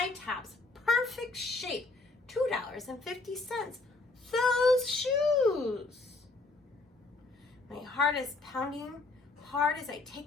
tops, perfect shape, $2.50. Those shoes. My heart is pounding hard as I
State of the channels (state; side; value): quieter; right; 3.3 dB